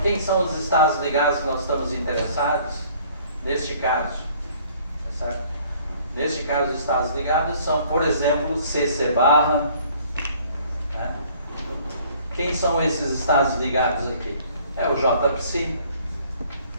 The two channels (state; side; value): inverted; both; correlation -0.57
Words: são os estados ligados que nós estamos interessados neste caso? Tá certo? Neste caso, os estados ligados são, por exemplo, CC barra. Né? Quem são esses estados ligados aqui? É o JPSI,